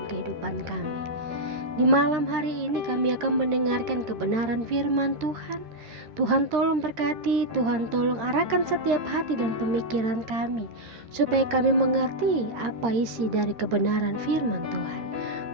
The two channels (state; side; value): late; left; 13 ms